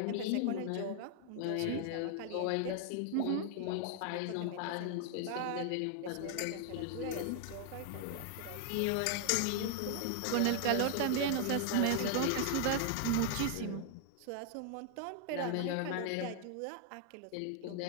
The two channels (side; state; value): both; different; correlation 0.00